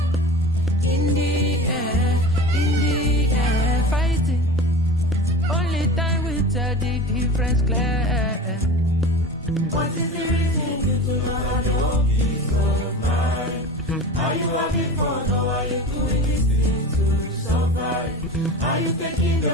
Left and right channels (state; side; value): normal; both; correlation 0.33